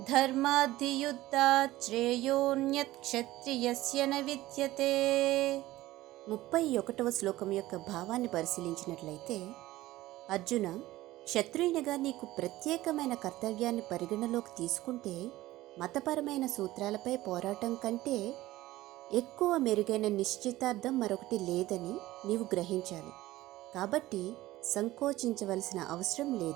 ధర్మాద్ధియుద్ధాత్ శ్రేయోన్యత్ క్షత్రియస్య న విద్యతే. 31వ శ్లోకం యొక్క భావాన్ని పరిశీలించినట్లయితే, అర్జున, క్షత్రియునిగా నీకు ప్రత్యేకమైన కర్తవ్యాన్ని పరిగణలోకి తీసుకుంటే మతపరమైన సూత్రాలపై పోరాటం కంటే ఎక్కువ మెరుగైన నిశ్చితార్థం మరొకటి లేదని నీవు గ్రహించాలి. కాబట్టి సంకోచించవలసిన అవసరం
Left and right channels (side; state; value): left; quieter; 16.8 dB